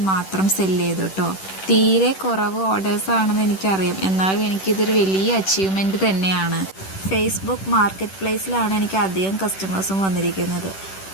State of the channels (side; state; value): right; late; 10 ms